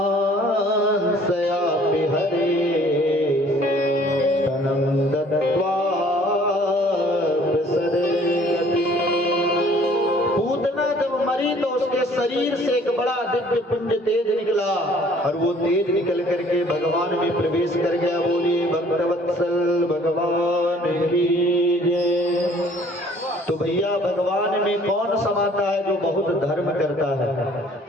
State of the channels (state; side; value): normal; both; correlation 0.56